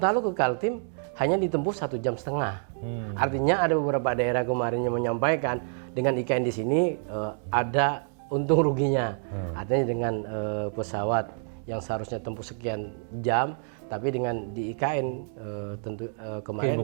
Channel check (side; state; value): left; silent; 60 dB below the other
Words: ke Kaltim hanya ditempuh 1,5 jam. Artinya ada beberapa daerah kemarin yang menyampaikan dengan IKN di sini ada untung ruginya. Artinya dengan pesawat yang seharusnya tempuh sekian jam, tapi dengan di IKN tentu